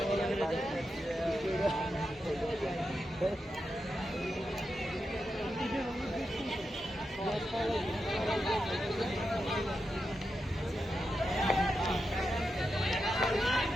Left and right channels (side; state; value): both; normal; correlation 0.88